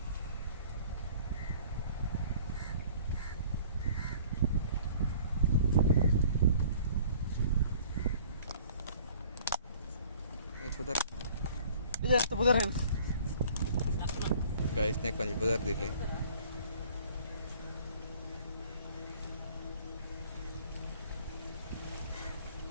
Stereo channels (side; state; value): both; inverted; correlation -0.52